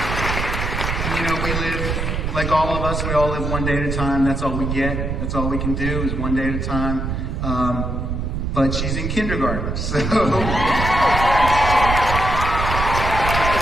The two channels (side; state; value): right; noise; rumble, 2 dB below the sound